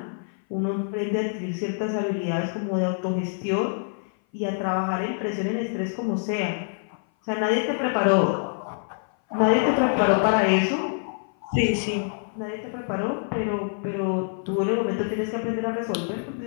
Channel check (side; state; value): right; silent; 57 dB below the other